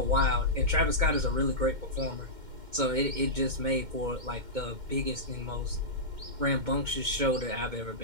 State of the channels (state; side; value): late; left; 2.1 ms